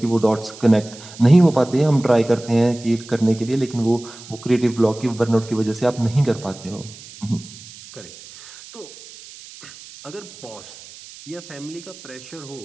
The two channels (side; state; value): right; noise; hiss, 18 dB below the sound